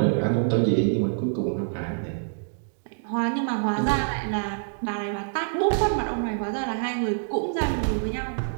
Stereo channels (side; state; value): left; silent; digital silence